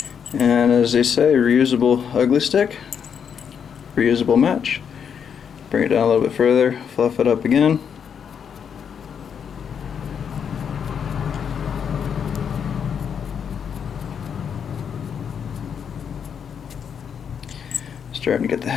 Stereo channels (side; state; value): right; quieter; 7.4 dB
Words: And as they say, reusable ugly stick, reusable match. Bring it down a little bit further, fluff it up again. Starting to get the